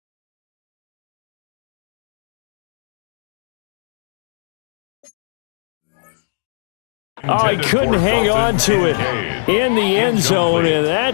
Oh, he couldn't hang on to it in the end zone, and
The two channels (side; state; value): right; silent; digital silence